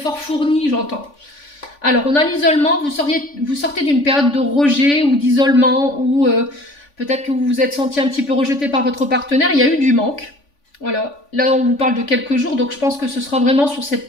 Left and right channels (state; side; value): late; right; 3.5 ms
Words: fournis, j'entends. Alors, on a l'isolement. Vous sortez d'une période de rejet ou d'isolement ou peut-être que vous vous êtes senti un petit peu rejeté par votre partenaire. Il y a eu du manque. Voilà. Là, on vous parle de quelques jours. Donc, je pense que ce sera vraiment sur cette